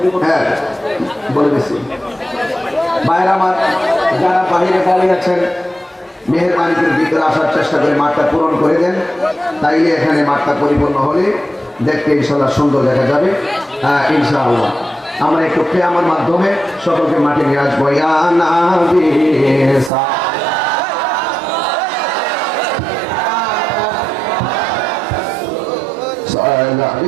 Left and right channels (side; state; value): left; drops out; at 19.9 s